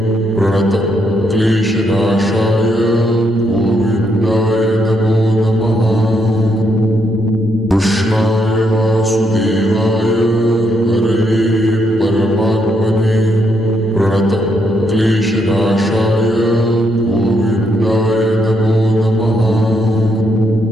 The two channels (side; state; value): both; normal; correlation 0.77